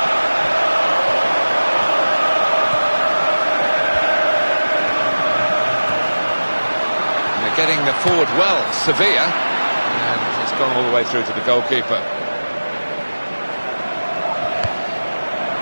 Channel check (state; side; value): inverted; both; correlation -1.00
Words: Getting the forward well, Sevilla, and it's gone all the way through to the goalkeeper.